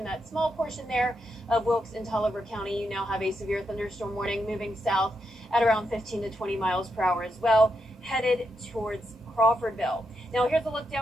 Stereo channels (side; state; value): both; normal; correlation 0.83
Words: that small portion there of Wilkes and Tolliver County, you now have a severe thunderstorm warning moving south at around 15 to 20 miles per hour as well, headed towards Crawfordville. Now here's a look